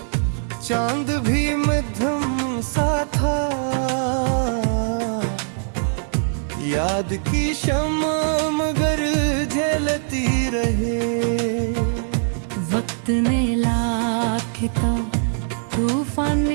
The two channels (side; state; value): left; silent; digital silence